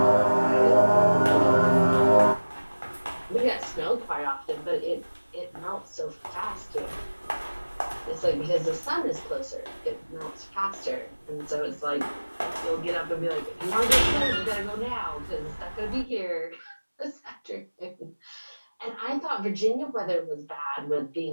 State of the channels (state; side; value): inverted; both; correlation -1.00